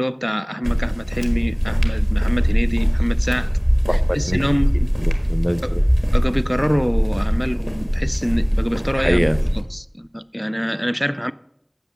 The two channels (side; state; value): both; identical; correlation 1.00